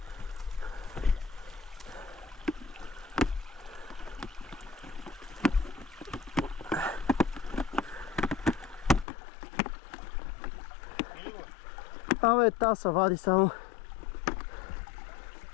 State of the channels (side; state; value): right; drops out; at 9.1 s